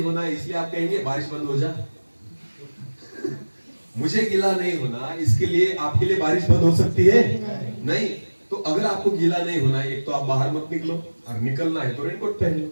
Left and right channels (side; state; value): both; inverted; correlation -1.00